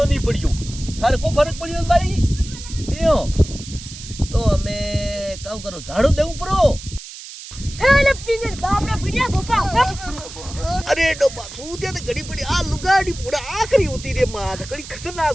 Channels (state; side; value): noise; right; hiss, 14 dB below the sound